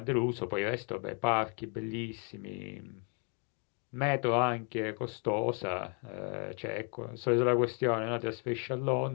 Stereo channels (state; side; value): quieter; right; 37.5 dB